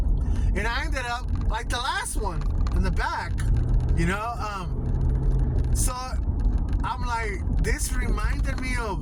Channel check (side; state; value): both; identical; correlation 1.00